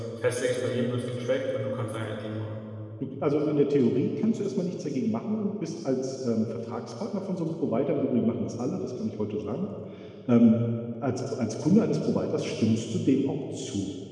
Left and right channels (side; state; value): both; identical; correlation 1.00